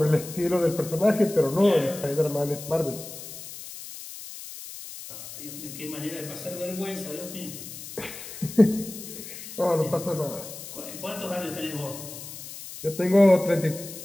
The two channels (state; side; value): noise; left; hiss, 12 dB below the sound